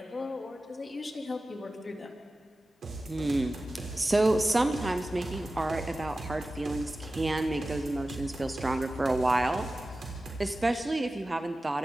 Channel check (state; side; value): normal; both; correlation 0.95